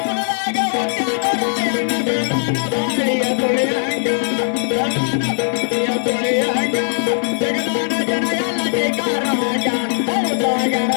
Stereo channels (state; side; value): silent; right; 60 dB below the other